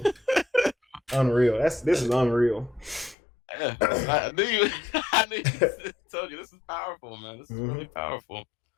Unreal. This is unreal. Yeah, I knew you told you this is powerful, man. This is really powerful.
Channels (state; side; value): drops out; right; at 3.2 s